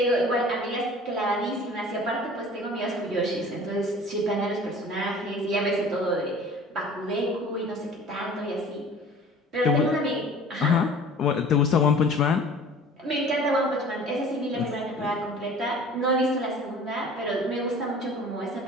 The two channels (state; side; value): normal; both; correlation 0.45